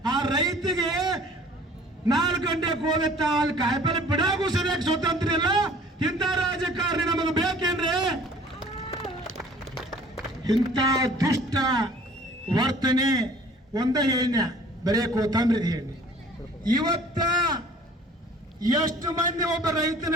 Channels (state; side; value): normal; both; correlation 0.51